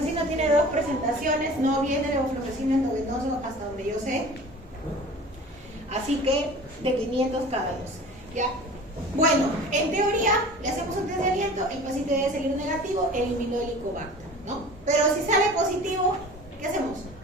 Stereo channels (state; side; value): normal; both; correlation 0.41